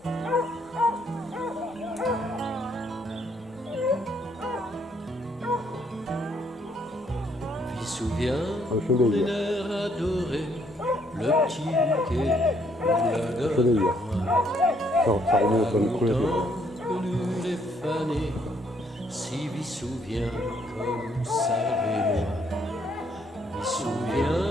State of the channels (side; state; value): both; normal; correlation 0.69